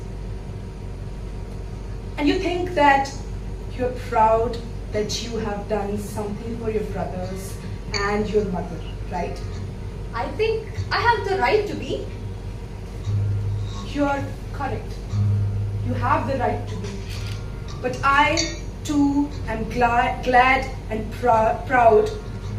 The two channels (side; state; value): both; identical; correlation 1.00